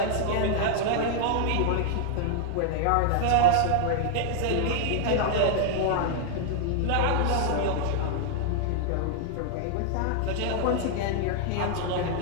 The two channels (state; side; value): different; both; correlation -0.01